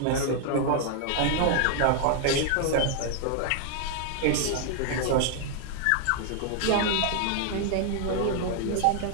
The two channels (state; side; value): different; both; correlation 0.00